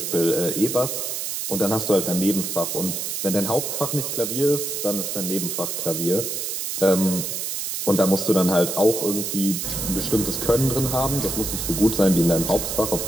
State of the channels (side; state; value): right; noise; hiss, 3 dB below the sound